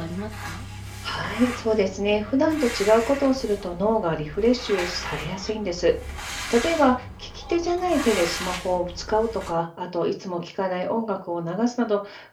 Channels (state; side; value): identical; both; correlation 1.00